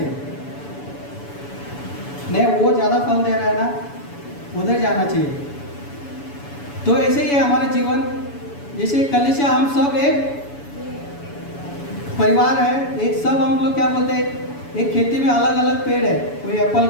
नहीं, वो ज़्यादा फल दे रहा है ना, उधर जाना चाहिए। तो ऐसे ही है हमारा जीवन। जैसे कलीसिया, हम सब एक परिवार है, एक सब हम लोग क्या बोलते हैं, एक खेती में अलग अलग पेड़ है, कोई एप्पल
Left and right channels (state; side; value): late; right; 7.0 ms